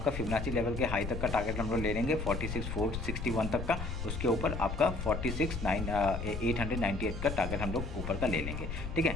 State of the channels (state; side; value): noise; left; rumble, 5 dB below the sound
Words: फिबोनाची लेवल के हाई तक का टारगेट हम लोग ले लेंगे 46,461 तक का, उसके ऊपर आपका 46,898 का टारगेट हम लोग ऊपर का ले लेंगे, ठीक है।